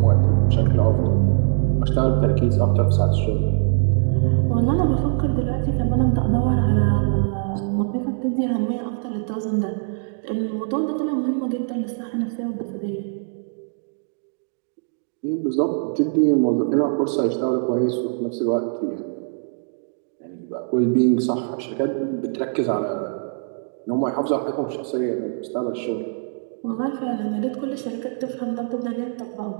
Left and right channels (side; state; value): left; silent; digital silence